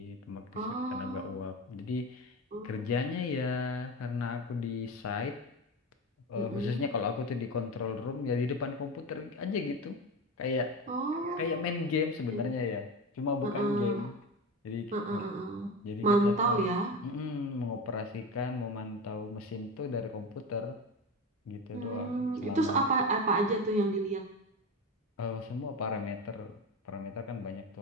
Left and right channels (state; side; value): normal; both; correlation 0.24